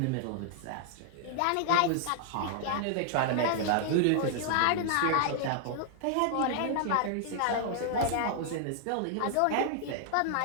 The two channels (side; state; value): both; different; correlation -0.01